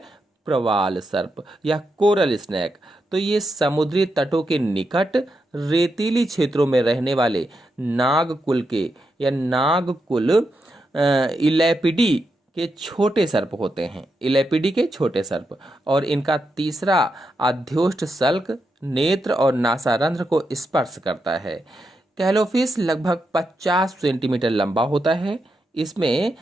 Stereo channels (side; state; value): both; normal; correlation 0.84